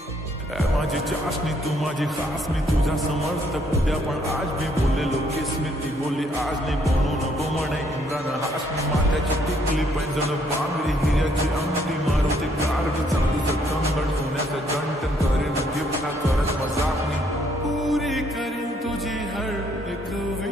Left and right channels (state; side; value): normal; both; correlation 0.68